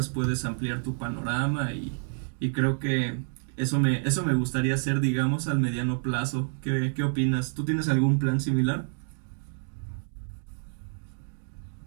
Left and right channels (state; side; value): silent; left; digital silence